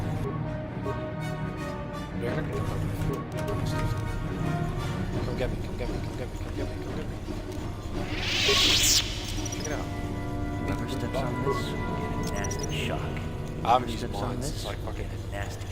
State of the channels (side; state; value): both; identical; correlation 1.00